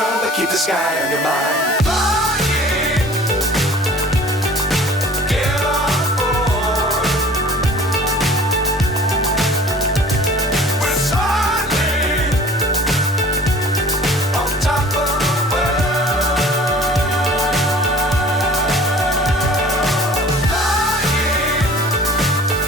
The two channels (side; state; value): both; normal; correlation 0.47